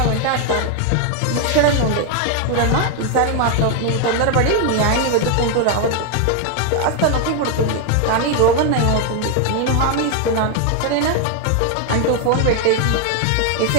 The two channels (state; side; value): different; both; correlation 0.00